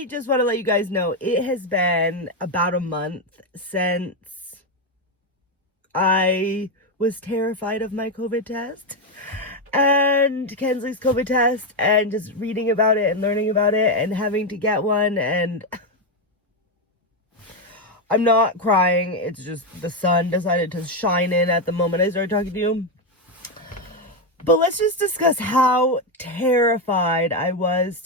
just want to let you guys know it has been about a month since I was terrified of my COVID test and Kensley's COVID test, and just reading about it and learning about it and having to get one. And I'm not crying. It's just the sun decided to shine in at the moment I started talking to you. But let's just discuss how terrified I was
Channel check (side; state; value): both; normal; correlation 0.06